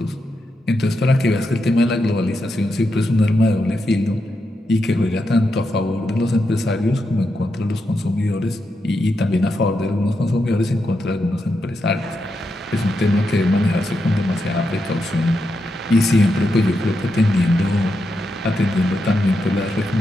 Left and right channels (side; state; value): both; normal; correlation 0.85